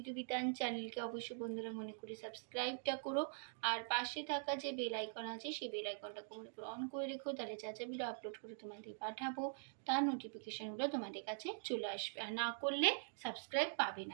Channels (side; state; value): left; silent; digital silence